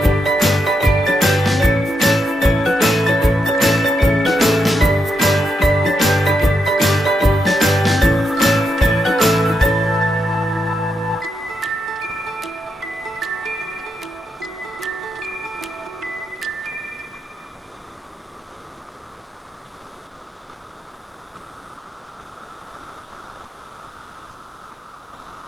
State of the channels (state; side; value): normal; both; correlation 0.82